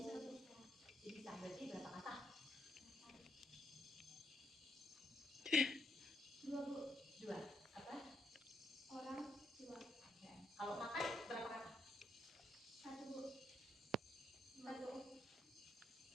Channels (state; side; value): normal; both; correlation 0.76